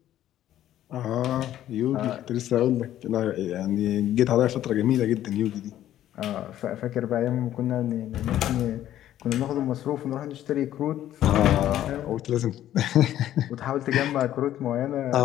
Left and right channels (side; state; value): right; quieter; 12.4 dB